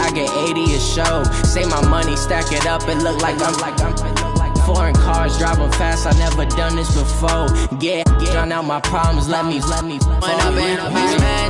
get 80 a show. Say my money, stack it up, it look like I'm foreign cars, driving fast, I never done this before. Drown out my problems, let me When I've been up is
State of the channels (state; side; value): identical; both; correlation 1.00